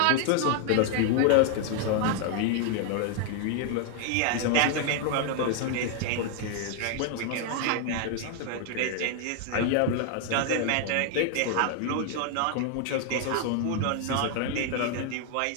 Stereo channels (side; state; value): both; different; correlation 0.00